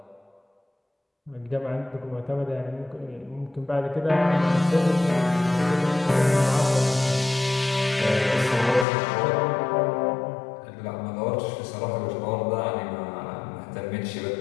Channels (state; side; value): drops out; right; at 8.8 s